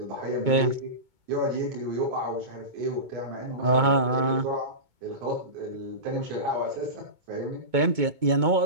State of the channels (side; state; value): left; late; 2.2 ms